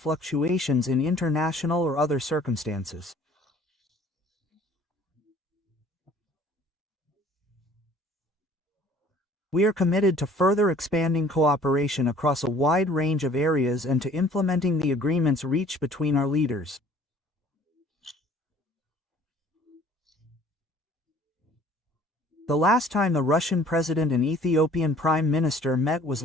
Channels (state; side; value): normal; both; correlation 0.53